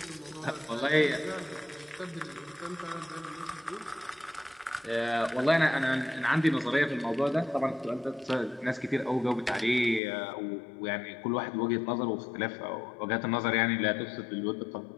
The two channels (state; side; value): drops out; right; at 10.0 s